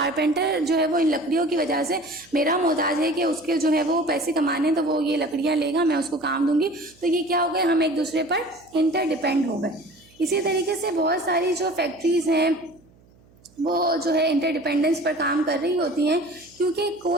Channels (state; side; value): noise; right; hum, 29 dB below the sound